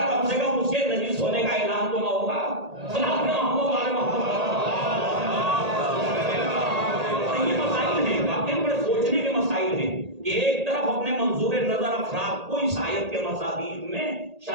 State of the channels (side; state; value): left; late; 1.8 ms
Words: کم سے کم اس کے نجس ہونے کا اعلان تو نہ ہوگا. یہ مسائل ہیں، واقعی بڑے سوچنے کے مسائل ہیں کہ ایک طرف اپنے منظور نظر افراد کو اس آیت کے مصادیق میں